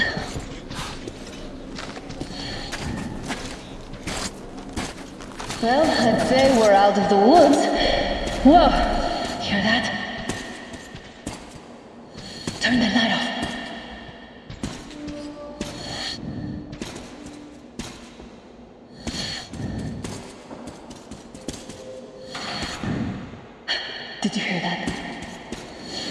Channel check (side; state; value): both; identical; correlation 1.00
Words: Well, I'd say we're out of the woods. Whoa! Hear that? Turn the light off. Did you hear that?